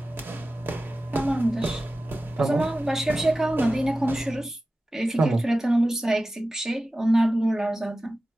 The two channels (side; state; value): both; normal; correlation 0.95